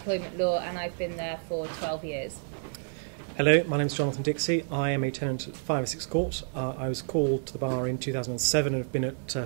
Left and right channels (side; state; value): left; silent; 58 dB below the other